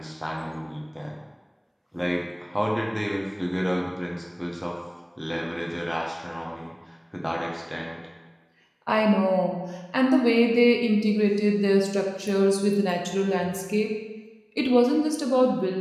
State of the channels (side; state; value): both; identical; correlation 1.00